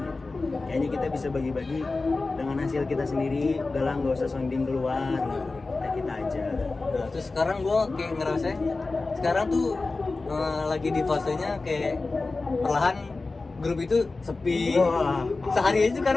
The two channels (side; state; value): right; quieter; 3.6 dB